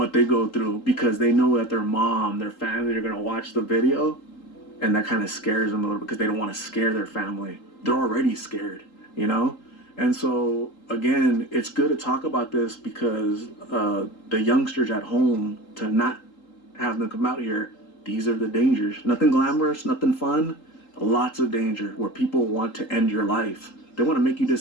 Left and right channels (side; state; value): right; late; 3.8 ms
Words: they go through because they know that their mom, their family are gonna watch the video, and that kind of scares them a little because they don't want to scare their family. They're already scared. And so again, it's good to talk about this because the youngsters at home, to not have them come out here, these are the dangers. Nothing glamorous, nothing fun, lots of danger where people want to end your life. They want to make you